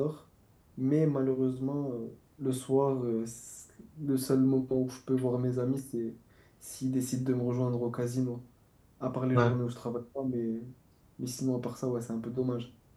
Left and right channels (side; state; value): both; identical; correlation 1.00